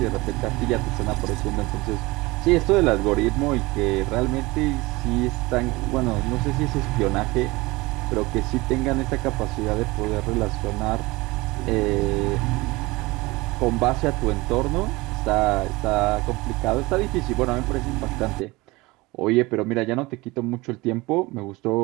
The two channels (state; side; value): quieter; left; 22.1 dB